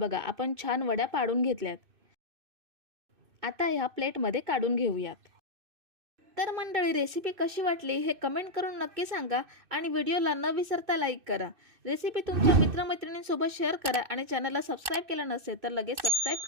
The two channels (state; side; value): late; left; 2.6 ms